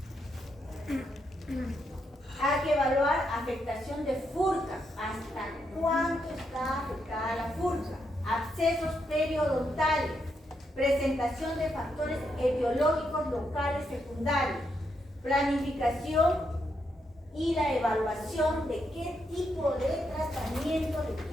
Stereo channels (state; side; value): normal; both; correlation 0.80